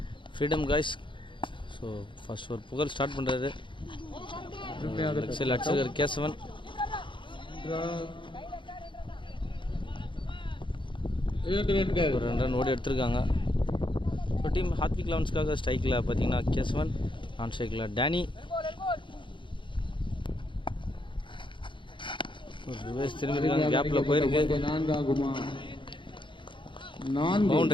Freedom guys. So first for Pugal start பண்றாரு. XL அடிச்சிருக்காரு கேசவன். ஒரு 2 run ஓடி எடுத்திருக்காங்க. இப்போ டீம் ஹார்திக் லவன்ஸ்க்காக ஸ்ட்ரைக்கில் பார்த்தீங்கன்னா கேசவன், நான் ஸ்ட்ரைக்கில் டேனி. ரிவர்ஸ் திரும்பிருக்காங்க, கேப்பில் போயிருக்கு.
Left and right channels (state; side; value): late; right; 0.24 ms